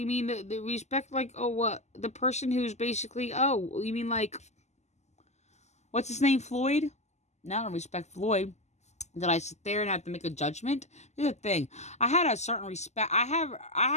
mean the respect, like, oh, what? The person who's basically, oh, you mean like, what's his name, Floyd? No, I don't respect Floyd. Did I sit there and have to make a judgment? Here's the thing. I had a certain respect. I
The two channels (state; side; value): late; right; 0.33 ms